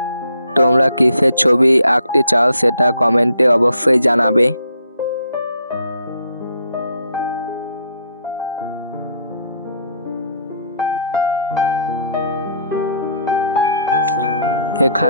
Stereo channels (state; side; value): inverted; both; correlation -0.67